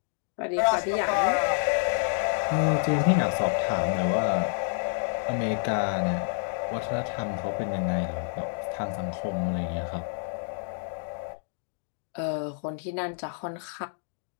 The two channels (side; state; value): right; silent; digital silence